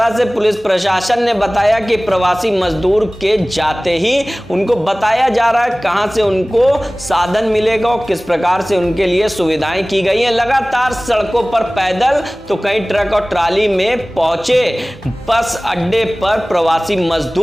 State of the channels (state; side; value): normal; both; correlation 0.98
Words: से पुलिस प्रशासन ने बताया कि प्रवासी मजदूर के जाते ही उनको बताया जा रहा है कहां से उनको साधन मिलेगा और किस प्रकार से उनके लिए सुविधाएं की गई हैं। लगातार सड़कों पर पैदल तो कहीं ट्रक और ट्राली में पहुंचे बस अड्डे पर प्रवासी